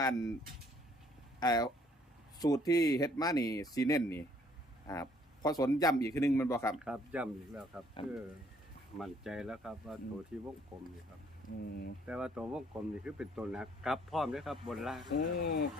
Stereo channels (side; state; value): both; normal; correlation 0.63